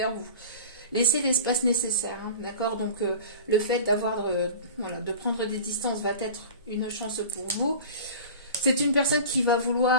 vous. Laissez l'espace nécessaire, hein, d'accord? Donc le fait de prendre des distances va être une chance pour vous. C'est une personne qui va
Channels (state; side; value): inverted; both; correlation -0.37